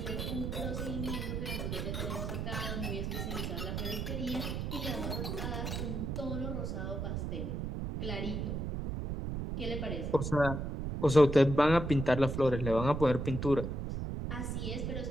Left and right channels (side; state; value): right; noise; rumble, 3 dB below the sound